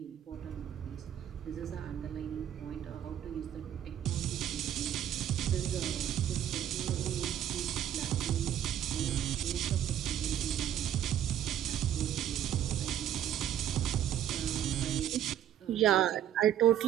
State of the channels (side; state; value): left; quieter; 10.5 dB